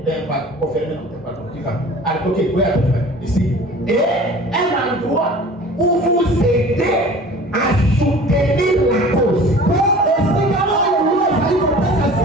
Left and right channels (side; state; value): both; normal; correlation 0.44